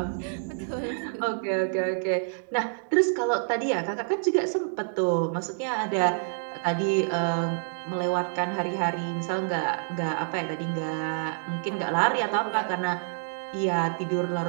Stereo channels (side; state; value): left; silent; digital silence